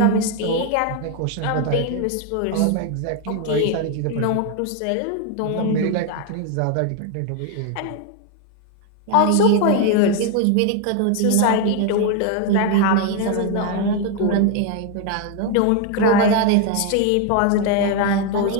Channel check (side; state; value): both; different; correlation 0.01